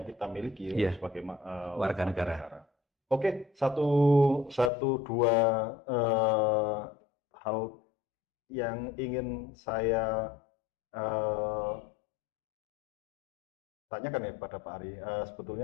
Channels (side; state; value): right; drops out; at 4.7 s